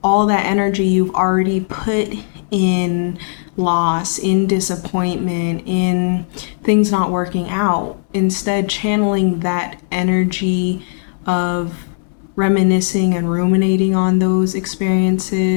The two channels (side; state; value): right; silent; digital silence